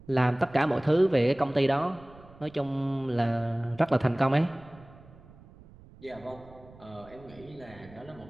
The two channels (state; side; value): noise; right; rumble, 22 dB below the sound